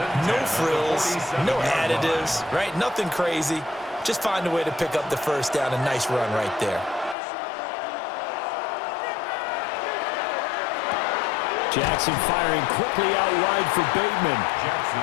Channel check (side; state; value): right; drops out; at 7.2 s